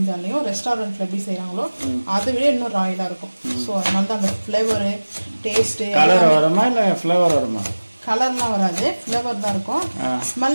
ரெஸ்டாரண்ட்டில் எப்படி செய்கிறாங்களோ அதை விட இன்னும் ராயலாக இருக்கும். ஸோ அதனால தான் அந்த ஃப்ளேவரு டேஸ்ட்டு. கலர் வருமா இல்லை ஃப்ளேவர் வருமா? கலர்லாம் வராது, ஃப்ளேவர் தான் இருக்கும்,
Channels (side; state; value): both; inverted; correlation -1.00